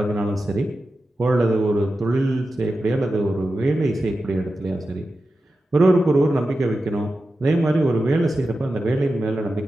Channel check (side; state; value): both; normal; correlation 0.92